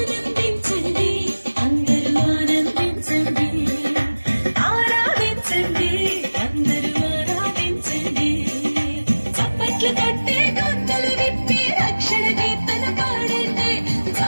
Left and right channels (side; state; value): both; inverted; correlation -1.00